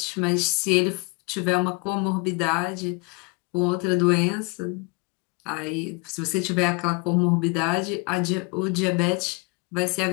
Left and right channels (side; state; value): right; quieter; 29.5 dB